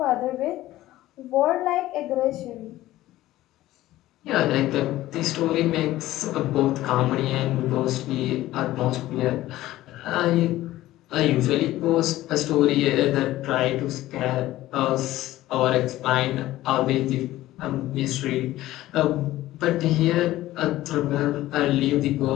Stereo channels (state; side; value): quieter; right; 15.6 dB